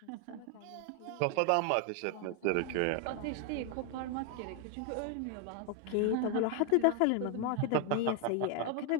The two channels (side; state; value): both; different; correlation 0.00